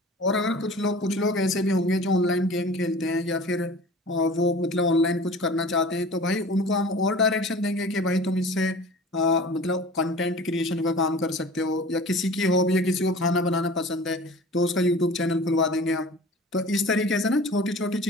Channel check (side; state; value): both; normal; correlation 0.41